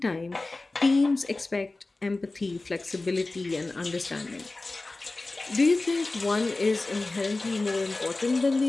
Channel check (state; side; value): quieter; right; 3.2 dB